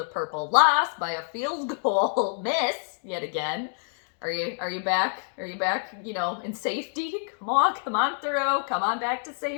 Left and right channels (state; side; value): silent; right; digital silence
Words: purple loss by a field goal miss yet again. Are you back? Are you back, in safety? Come on through. Come on back to